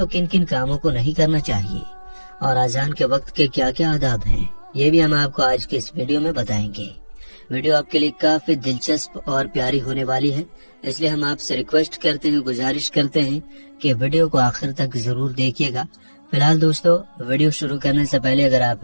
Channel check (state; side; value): inverted; both; correlation -1.00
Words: کن کن کاموں کو نہیں کرنا چاہیے، اور اذان کے وقت کے کیا کیا آداب ہیں، یہ بھی ہم آپ کو آج کے اس ویڈیو میں بتائیں گے۔ ویڈیو آپ کے لیے کافی دلچسپ اور پیاری ہونے والی ہے، اس لیے ہم آپ سے ریکویسٹ کرتے ہیں، گزارش کرتے ہیں کہ ویڈیو کو آخر تک ضرور دیکھیے گا۔ فی الحال دوستو، ویڈیو شروع کرنے سے پہلے اگر آپ